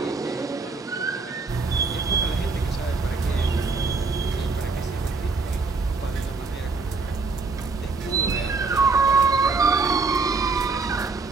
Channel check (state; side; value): quieter; left; 4.2 dB